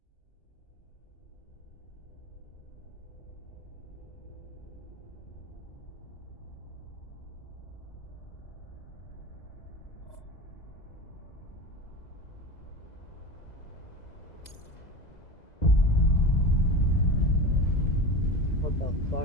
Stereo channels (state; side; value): late; right; 2.0 ms